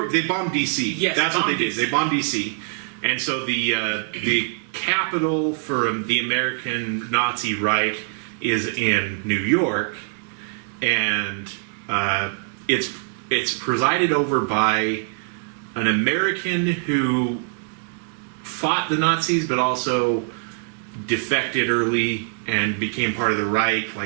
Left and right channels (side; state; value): left; silent; 58 dB below the other